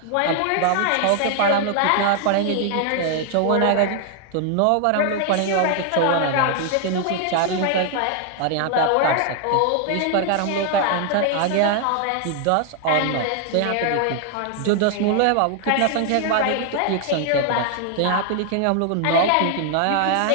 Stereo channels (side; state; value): both; different; correlation 0.00